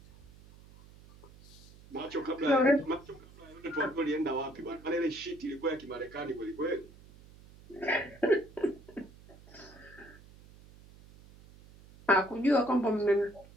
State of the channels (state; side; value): noise; right; hum, 22 dB below the sound